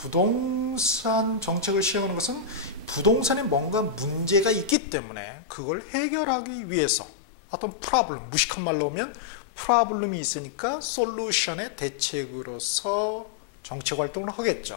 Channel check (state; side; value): drops out; right; at 4.8 s